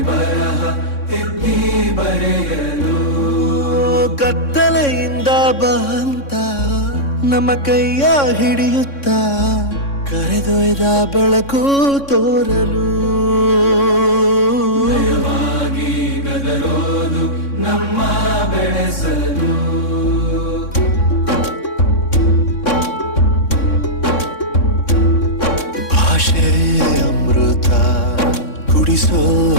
ಬರಹ ತಿದ್ದಿ ಬರೆಯಲು ಕತ್ತಲೆಯಿಂದ ಬಂತ ನಮ್ಮ ಕೈಯ ಹಿಡಿಯುತ್ತ ಕರೆದೊಯ್ದ ಬೆಳಕು ತೋರಲು ಭಯವಾಗಿ ಗದರೋದು ನಮ್ಮ ಬೆಳೆಸಲು ಭಾಷೆ ಅಮೃತ ಕುಡಿಸೋ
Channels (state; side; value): late; right; 3.6 ms